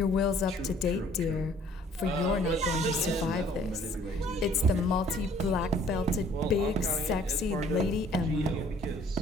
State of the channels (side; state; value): both; normal; correlation 0.57